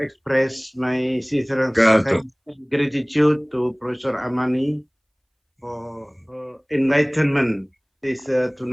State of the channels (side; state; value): both; identical; correlation 1.00